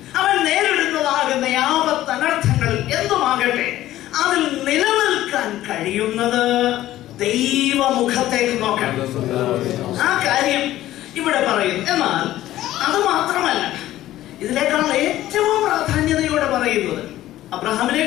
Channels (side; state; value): right; quieter; 14.4 dB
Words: അവൻ നേരിടുന്നതാകുന്ന ആപത്ത് അനർത്ഥങ്ങളിൽ എന്തുമാകട്ടെ അതിൽ നിലനിൽക്കാൻ കഴിയുന്നത് ദൈവമുഖത്തേക്ക് നോക്കാൻ. ആ കാര്യം ഇവിടെ പറയുന്നു. എന്നാൽ അത് മാത്രമല്ല, ഇതിനേക്കാൾ ഏറ്റവും പ്രാധാന്യതയോടെ പറയുന്നത്, അബ്രഹാമിനെ